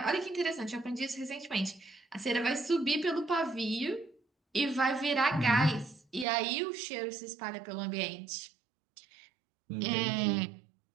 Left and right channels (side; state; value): left; drops out; at 6.2 s